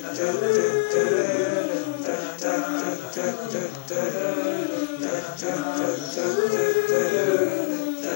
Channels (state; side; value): quieter; right; 25.1 dB